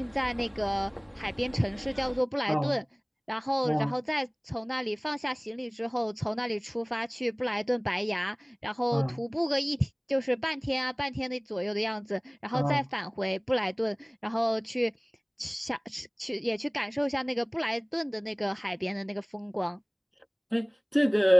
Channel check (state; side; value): identical; both; correlation 1.00